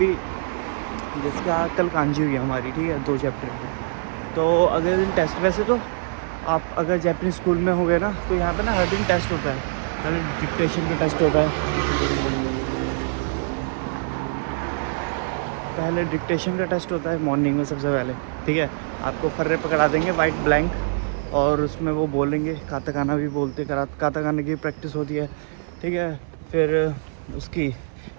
जैसे कल कांजी हुई है हमारी, ठीक है, 2 चैप्टर की, तो अगले दिन टेस्ट। वैसे तो आप अगर जापानीज़ स्कूल में हो गए ना, तो यहाँ पे ना हर दिन टेस्ट होता है, हर दिन डिक्टेशन का टेस्ट होता है। पहले डिक्टेशन का टेस्ट होता है मॉर्निंग में सबसे पहले, ठीक है। आपको फर्रे पकड़ा देंगे वाइट ब्लैंक, और उसमें वो बोलेंगे, काताकाना भी बोलते, काताकाना की प्रैक्टिस होती है, ठीक है। फिर उसकी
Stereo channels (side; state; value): left; silent; digital silence